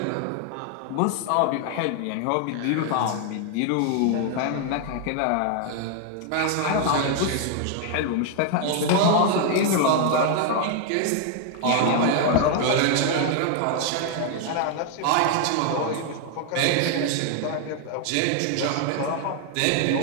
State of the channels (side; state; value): both; different; correlation 0.00